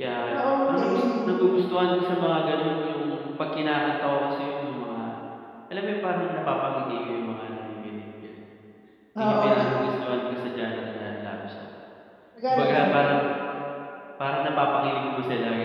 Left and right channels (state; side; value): identical; both; correlation 1.00